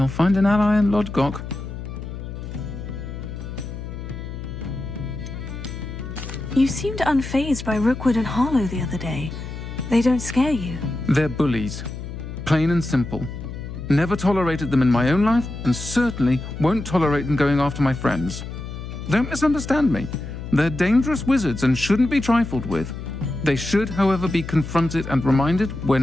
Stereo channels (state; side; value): noise; left; hum, 9 dB below the sound